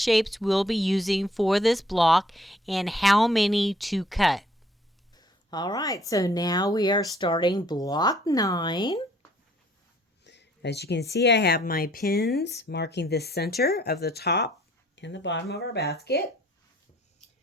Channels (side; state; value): both; normal; correlation 0.61